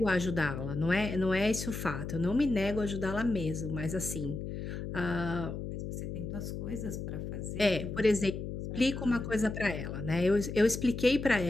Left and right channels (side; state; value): left; noise; hum, 6 dB below the sound